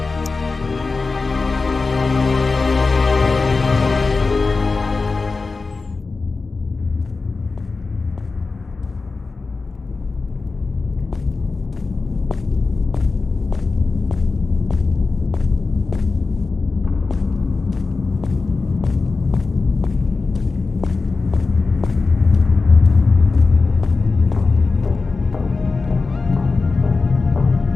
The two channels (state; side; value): quieter; right; 4.0 dB